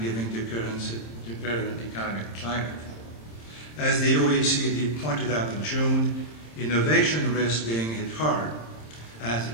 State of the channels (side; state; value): right; late; 26 ms